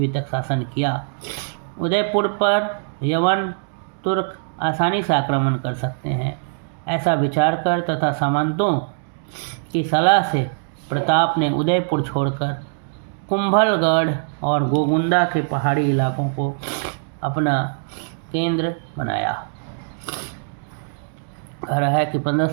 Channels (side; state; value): left; silent; digital silence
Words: तक शासन किया। उदयपुर पर यवन तुर्क आसानी से आक्रमण कर सकते हैं, ऐसा विचार कर तथा सामंतों की सलाह से प्रताप ने उदयपुर छोड़कर कुंभलगढ़ और गोगुंदा के पहाड़ी इलाकों को अपना केंद्र बनाया। कह रहा है कि